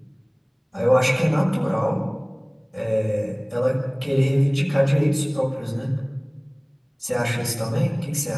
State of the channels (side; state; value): both; identical; correlation 1.00